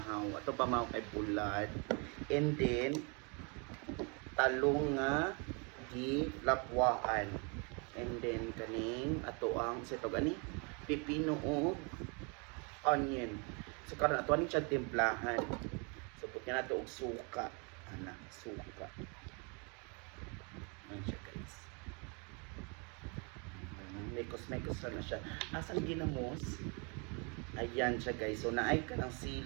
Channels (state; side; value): quieter; left; 33.9 dB